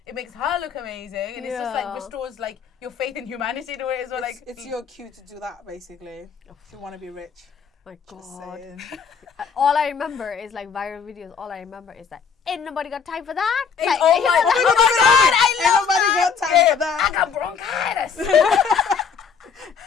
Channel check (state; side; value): quieter; right; 6.3 dB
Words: it makes her look amazing, and it's just like restores like your faith in humanity to it as well. Like It's your cue to do that basically if you want to be rich. My Just God. saying. All I remember is like viral videos. All I remember is that ain't nobody got time for that. Like, oh my god, Ain't nobody got time for that. I got bronchitis.